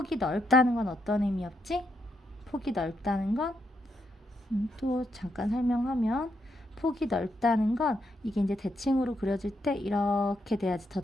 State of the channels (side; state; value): both; normal; correlation 0.80